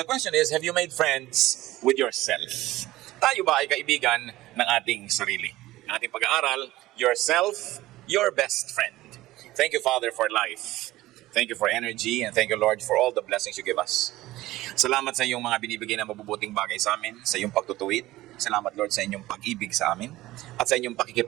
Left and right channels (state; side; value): quieter; left; 17.0 dB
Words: the question is, have you made friends with yourself? Tayo ba ay kaibigan ng ating sarili? Ang ating pag-aaral, yourself, your best friend. Thank you, Father, for life. Thank you for energy, and thank you, Lord, for all the blessings you give us. Salamat sa iyong mga binibigay na mabubuting bagay sa amin, sa iyong pagtutuwid. Salamat, Lord, sa inyong pag-ibig sa amin at sa inyong